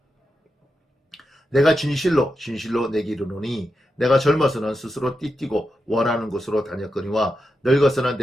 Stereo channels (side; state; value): both; normal; correlation 0.88